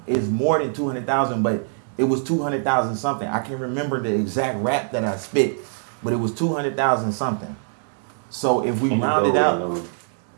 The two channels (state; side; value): silent; left; 63 dB below the other